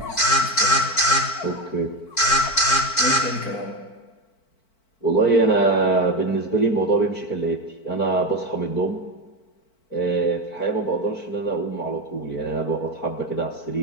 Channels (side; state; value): right; late; 4.5 ms